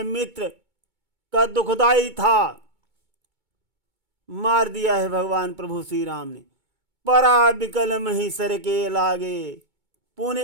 मित्र का दुखदाई था, मार दिया है भगवान प्रभु श्री राम ने। परा बिकल मही सर के लागे, पुनि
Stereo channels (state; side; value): late; left; 2.2 ms